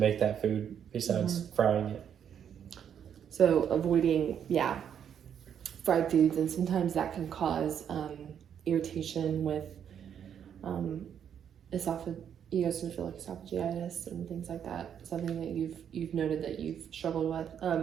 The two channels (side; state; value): left; quieter; 8.6 dB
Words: that food besides frying it. So avoiding fried foods, and sometimes that can cause irritation with esophagitis and things like that. Something that you've noted that you've struggled with.